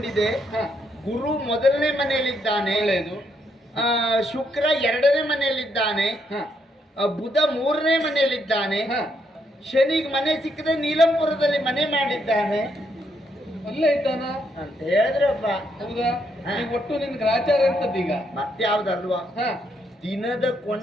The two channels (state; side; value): normal; both; correlation 0.75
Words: ಗುರು ಮೊದಲನೇ ಮನೆಯಲ್ಲಿದ್ದಾನೆ, ಒಳ್ಳೆಯದು. ಶುಕ್ರ 2ನೇ ಮನೆಯಲ್ಲಿದ್ದಾನೆ, ಬುಧ 3ನೇ ಮನೆಯಲ್ಲಿದ್ದಾನೆ, ಶನಿಗೆ ಮನೆ ಸಿಕ್ಕದೆ ನೀಲಂಪುರದಲ್ಲಿ ಮನೆ ಮಾಡಿದ್ದಾನೆ. ಅಲ್ಲೇ ಇದ್ದಾನ ಅಂತ ಹೇಳಿದ್ರಪ್ಪ. ಹೌದಾ? ಒಟ್ಟು ನಿನ್ ಗ್ರಾಚಾರ ಅಂತದ್ದೀಗ ಮತ್ತೆ ಯಾವ್ದಲ್ವಾ? ದಿನದ